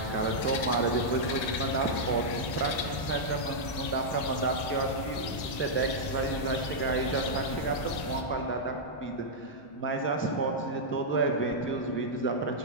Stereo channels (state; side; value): late; right; 1.9 ms